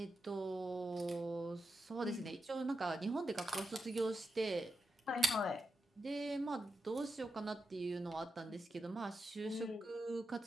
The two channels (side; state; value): both; normal; correlation 0.88